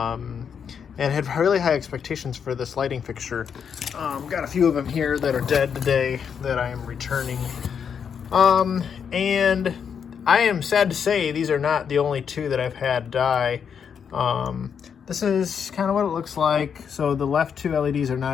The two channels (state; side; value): quieter; right; 7.2 dB